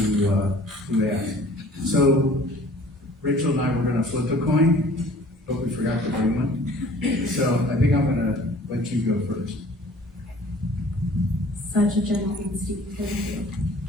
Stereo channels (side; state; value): both; normal; correlation 0.50